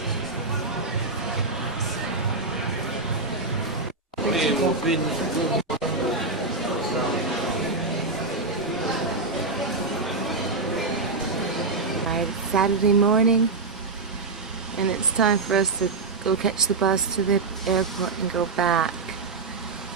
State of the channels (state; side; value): quieter; left; 3.8 dB